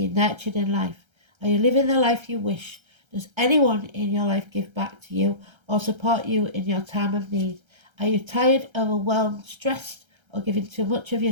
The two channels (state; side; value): late; left; 1.3 ms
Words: nurtured in life. Are you living the life you wish? Does anyone in your life give back to you or support you in your time of need? Are you tired, overwhelmed, stressed, or giving too much of